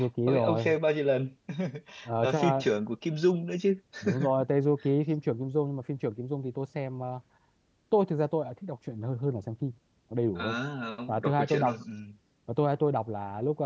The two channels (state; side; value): identical; both; correlation 1.00